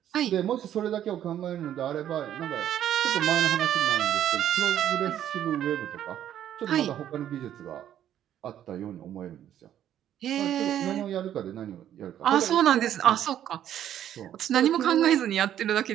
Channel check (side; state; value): left; quieter; 10.9 dB